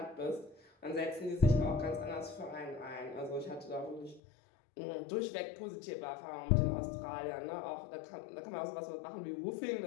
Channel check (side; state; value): right; drops out; at 4.2 s